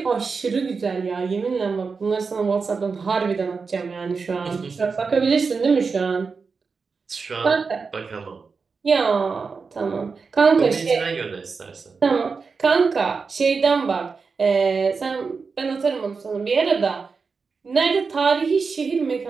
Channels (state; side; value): quieter; left; 4.9 dB